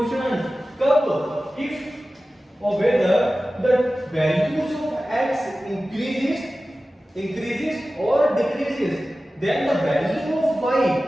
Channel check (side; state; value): both; normal; correlation 0.96